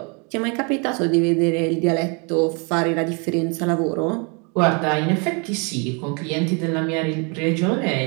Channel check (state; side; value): quieter; left; 34.0 dB